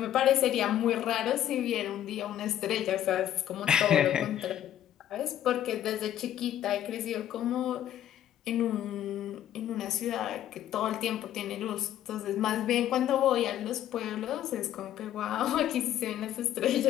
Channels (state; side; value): quieter; right; 11.5 dB